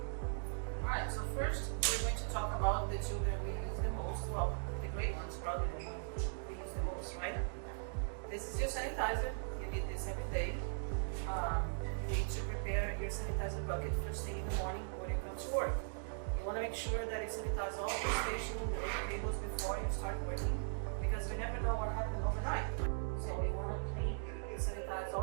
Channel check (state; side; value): silent; left; digital silence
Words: Alright, so first we're going to talk about the two that we use the most. Well, the great ones probably the one we use the most, right? This is your sanitizer. You need this every day. You need to prepare your sanitizer bucket first thing in the morning when you come to work. You want to make sure that you sanitize all the station and the tables before you start working, because you never know what happened overnight. So you want to clean and sanitize